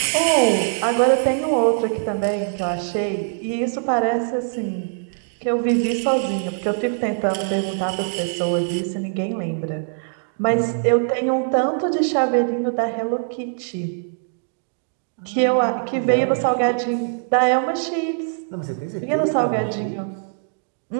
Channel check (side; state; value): left; silent; digital silence